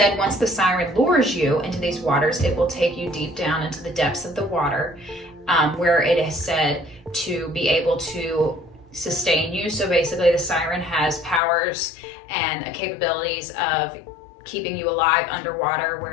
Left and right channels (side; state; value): right; drops out; at 11.4 s